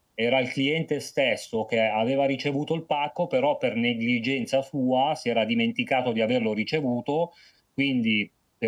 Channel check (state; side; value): identical; both; correlation 1.00